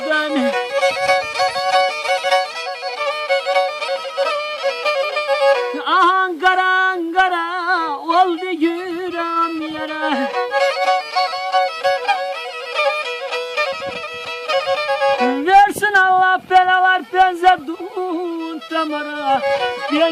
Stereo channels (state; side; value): identical; both; correlation 1.00